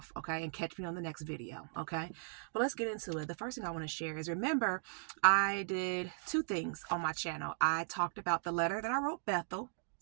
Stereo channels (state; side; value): silent; left; digital silence